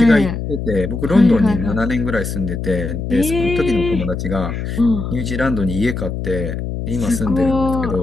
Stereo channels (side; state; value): left; noise; hum, 5 dB below the sound